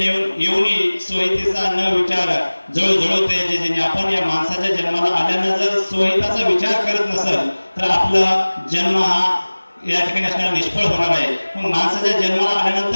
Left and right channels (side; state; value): both; inverted; correlation -1.00